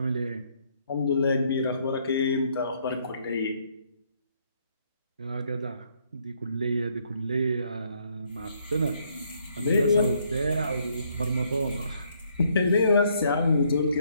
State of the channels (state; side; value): inverted; both; correlation -0.69